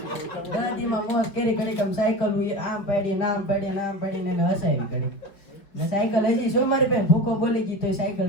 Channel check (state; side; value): late; right; 4.9 ms